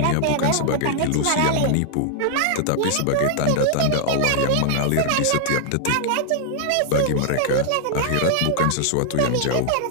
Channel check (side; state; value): both; different; correlation 0.00